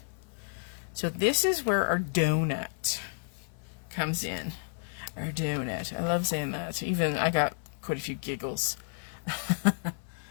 So this is where our donut comes in. Our donut. I love saying that. Even I got quite a few giggles.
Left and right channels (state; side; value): silent; right; 57 dB below the other